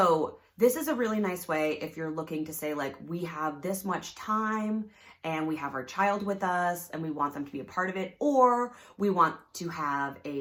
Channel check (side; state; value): both; identical; correlation 1.00